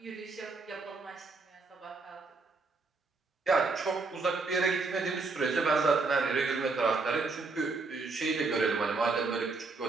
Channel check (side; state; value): left; quieter; 4.0 dB